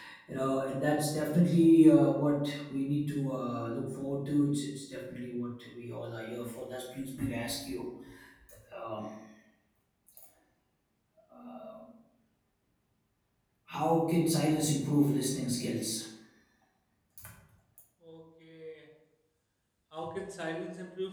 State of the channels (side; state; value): both; identical; correlation 1.00